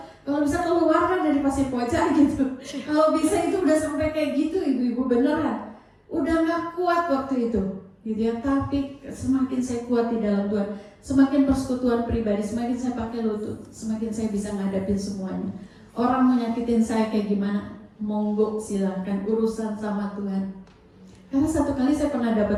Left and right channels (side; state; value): both; identical; correlation 1.00